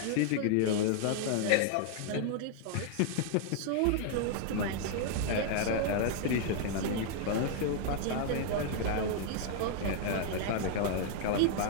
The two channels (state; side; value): different; both; correlation 0.00